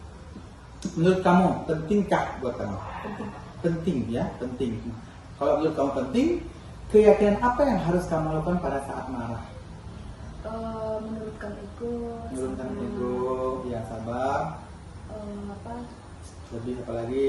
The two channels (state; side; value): identical; both; correlation 1.00